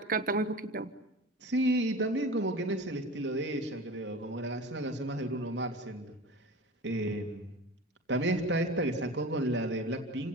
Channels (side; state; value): both; normal; correlation 0.34